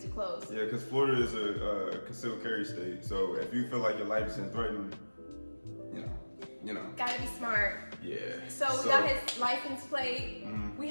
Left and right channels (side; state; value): both; inverted; correlation -1.00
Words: too close. Yeah, because Florida is a concealed carry state. So if you feel like your life is in threatened, you know. Gotta be smart. Yeah. So we got his license plate. Mm-hmm. We